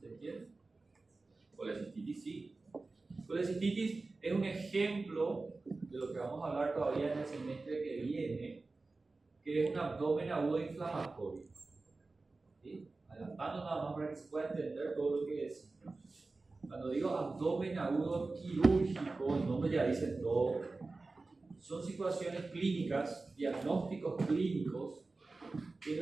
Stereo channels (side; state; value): left; quieter; 3.5 dB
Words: ¿Se entiende? Colecistitis sí. Colecistitis es un ejemplo de lo que vamos a hablar todavía en el semestre que viene, que es un abdomen agudo inflamatorio. ¿Sí? Adelantando nada más para que se pueda entender todo lo que es. Cuando digo abdomen agudo quirúrgico, el nombre ya dice todo. Son situaciones clínicas, diagnósticos clínicos, que